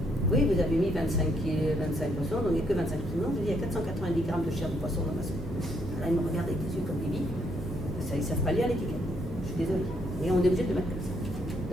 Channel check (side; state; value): both; normal; correlation 0.72